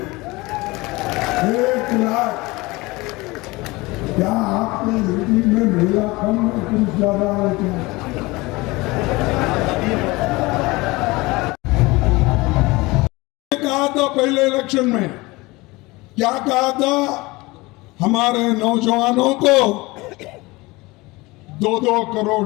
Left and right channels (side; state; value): right; quieter; 22.5 dB